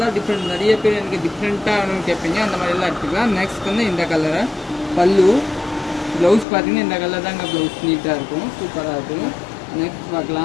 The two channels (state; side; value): drops out; right; at 6.5 s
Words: டிஃப்ரெண்ட். நிறைய பேர் எனக்கு டிஃப்ரெண்ட்டாக கேட்பீங்க, அந்த மாதிரி எல்லாம் எடுத்துக்கலாம். நெக்ஸ்ட் வந்து இந்த கலரை பல்லு. ப்ளவுஸ் பார்த்தீங்கன்னா இந்த கலர் தாங்க ப்ளவுஸ், நீட்டாக இருக்கும், சூப்பராக இருக்கும். நெக்ஸ்ட்